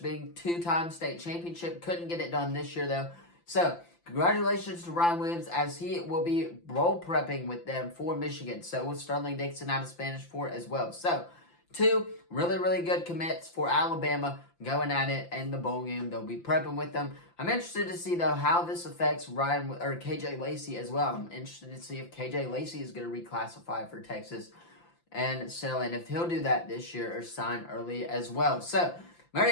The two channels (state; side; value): late; right; 5.8 ms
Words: being 2-time state championship. Couldn't get it done this year, though. So, congratulations to Ryan Williams, as he will be role prepping with them for Michigan. So, with Sterling Dixon out of Spanish Fort as well. So, 2 really, really good commits for Alabama going at it in the bowl game. They'll be prepping with them. I'm interested to see, though, how this affects KJ Lacey as well. I'm interested to see if KJ Lacey is going to reclassify for Texas and if he'll do that this year or sign early as well. So,